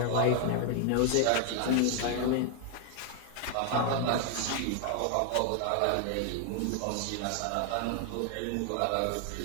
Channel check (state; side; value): different; both; correlation 0.00